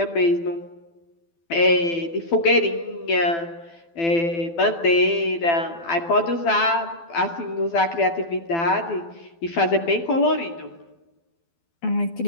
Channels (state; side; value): late; right; 12 ms